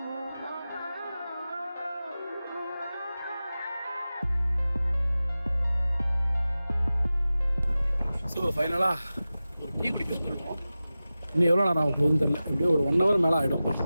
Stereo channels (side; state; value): both; inverted; correlation -0.95